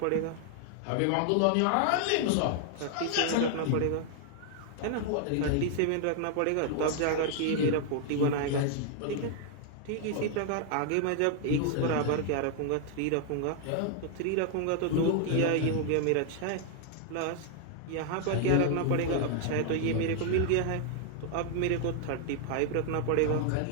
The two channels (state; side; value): different; both; correlation 0.00